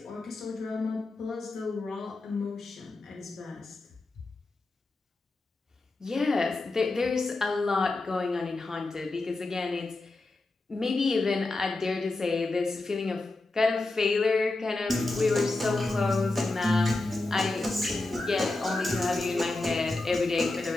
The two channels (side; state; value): right; quieter; 3.1 dB